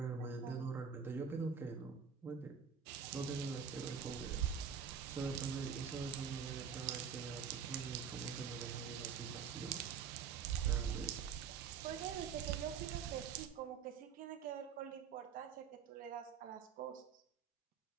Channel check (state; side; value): quieter; left; 6.9 dB